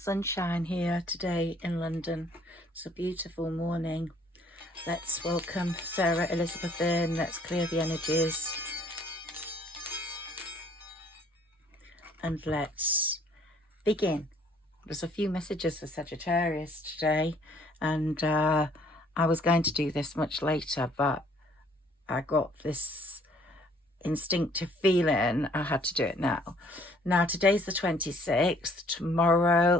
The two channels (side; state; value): both; normal; correlation 0.60